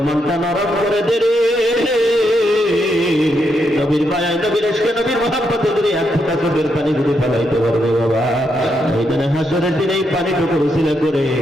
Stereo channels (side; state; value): both; normal; correlation 0.80